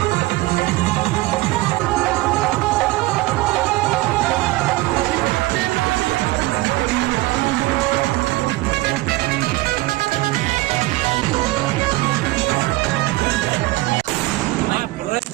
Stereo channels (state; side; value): quieter; left; 20.0 dB